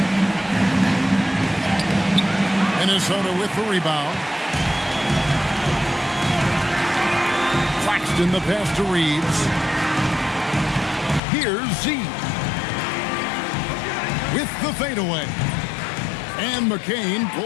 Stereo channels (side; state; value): right; drops out; at 11.2 s